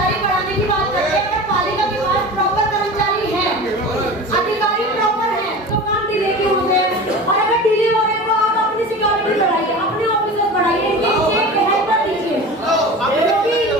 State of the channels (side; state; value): both; normal; correlation 0.34